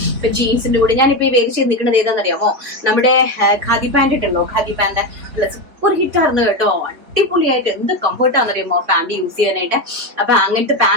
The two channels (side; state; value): left; late; 3.7 ms